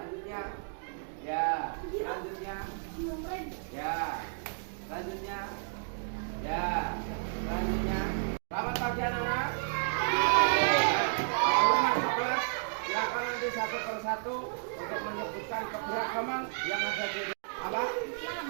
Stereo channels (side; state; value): left; silent; digital silence